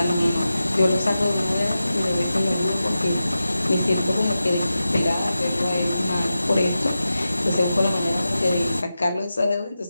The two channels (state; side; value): inverted; both; correlation -0.92